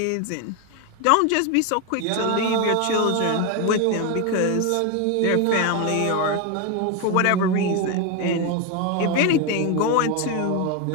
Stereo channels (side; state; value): both; different; correlation 0.02